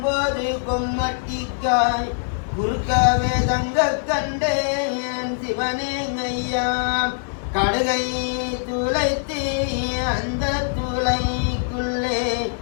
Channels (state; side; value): silent; right; digital silence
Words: கொம்மட்டிக்காய் குறுக்கவே தங்க கண்டேன் சிவனே ஐயா. கடுகை துளைத்து அந்த துளைக்குள்ளே